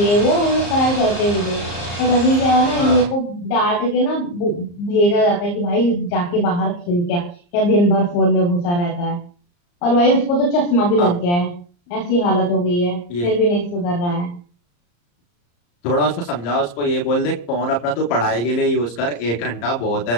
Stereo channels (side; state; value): right; late; 34 ms